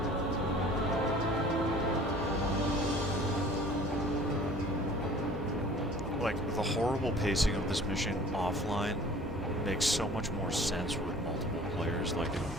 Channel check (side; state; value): both; normal; correlation 0.48